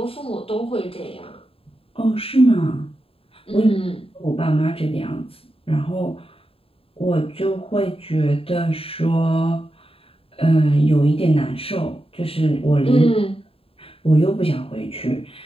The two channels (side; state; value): right; late; 0.27 ms